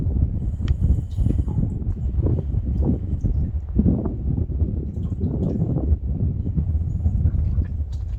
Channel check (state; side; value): identical; both; correlation 1.00